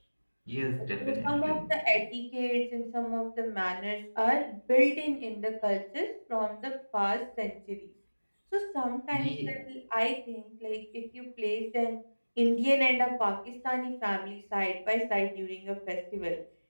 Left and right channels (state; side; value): inverted; both; correlation -1.00